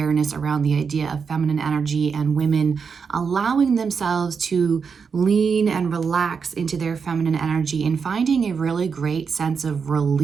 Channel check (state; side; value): quieter; left; 5.9 dB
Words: around the idea of feminine energy and women allowing themselves to lean and relax into their feminine energy and finding a really great sense of